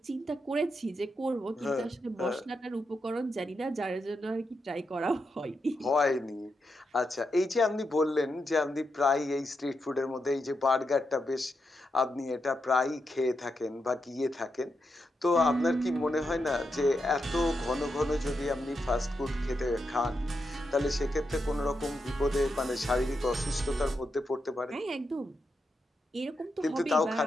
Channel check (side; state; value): both; normal; correlation 0.85